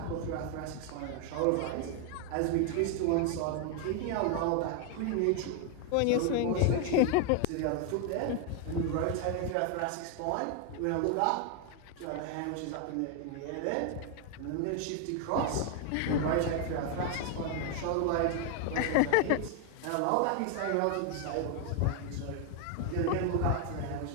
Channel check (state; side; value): different; both; correlation 0.01